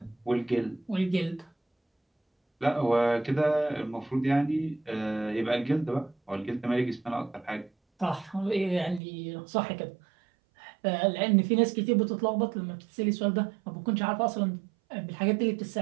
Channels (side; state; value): left; drops out; at 9.0 s